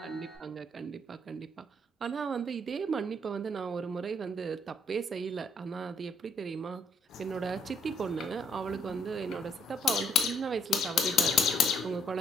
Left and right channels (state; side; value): normal; both; correlation 0.64